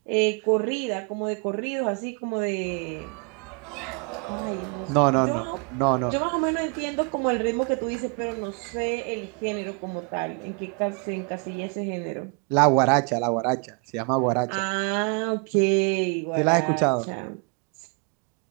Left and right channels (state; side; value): quieter; left; 35.6 dB